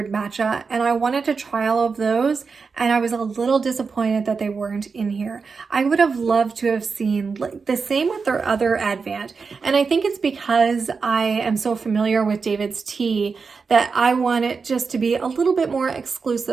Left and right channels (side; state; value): left; quieter; 5.0 dB